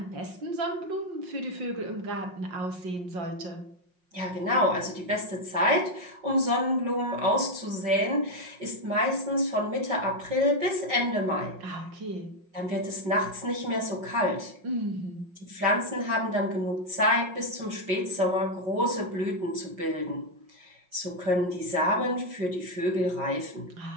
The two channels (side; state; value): left; late; 5.5 ms